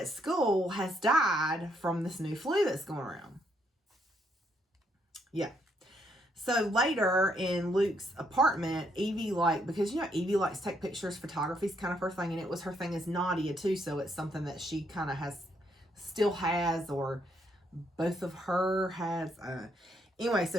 school has died from this new flu that's going around. Yeah. So later in Luke's apartment, Evie, like, because, you know, Evie likes to take pictures, photography's kind of her thing, and it was her thing as Nadia too, so it's something that she kind of still has, or both of her has. Anyway,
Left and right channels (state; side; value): normal; both; correlation 0.73